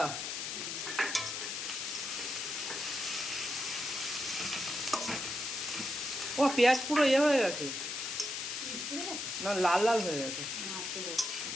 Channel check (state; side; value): noise; left; hiss, 4 dB below the sound